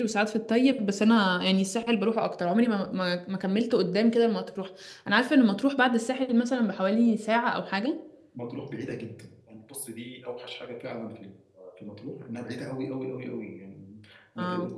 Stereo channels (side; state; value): both; identical; correlation 1.00